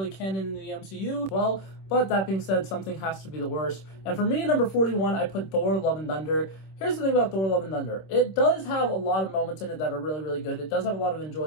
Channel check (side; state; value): right; late; 26 ms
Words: canon in the MCU. Well, but that being said, something has to be the worst. And for me, at number 41, I put Thor: Love and Thunder. Here's the thing about Thor: Love and Thunder. It does have a lot of moments in it that are really good. It does have a lot of